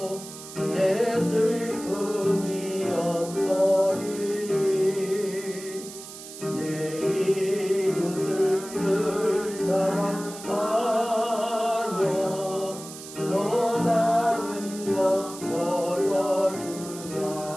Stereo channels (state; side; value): noise; right; hiss, 14 dB below the sound